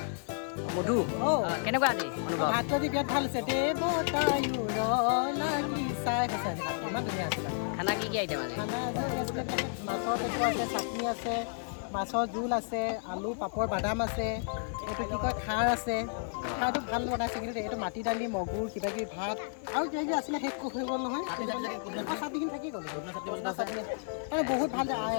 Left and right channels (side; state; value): right; silent; 57 dB below the other